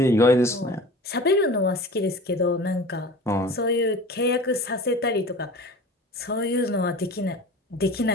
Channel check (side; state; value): both; normal; correlation 0.39